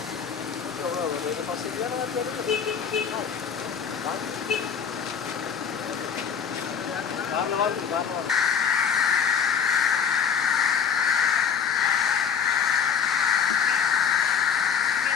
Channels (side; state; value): right; quieter; 7.1 dB